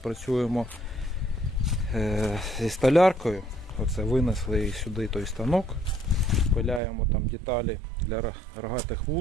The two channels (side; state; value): left; drops out; at 6.8 s